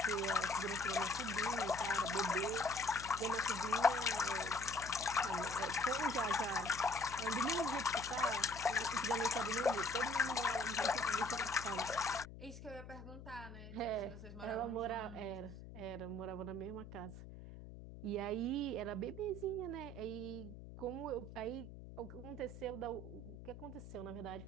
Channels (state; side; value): noise; left; hum, 13 dB below the sound